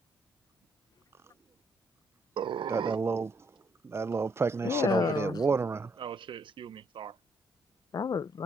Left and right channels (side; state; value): both; normal; correlation 0.71